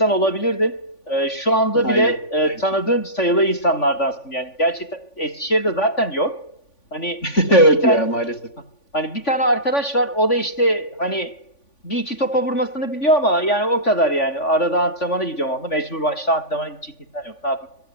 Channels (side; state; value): right; late; 3.5 ms